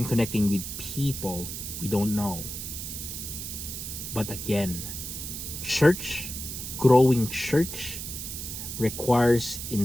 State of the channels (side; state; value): right; noise; hiss, 7 dB below the sound